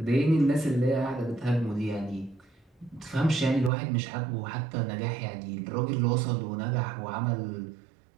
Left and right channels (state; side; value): drops out; left; at 3.7 s